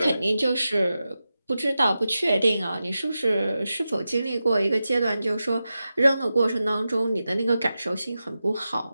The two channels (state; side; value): inverted; both; correlation -0.92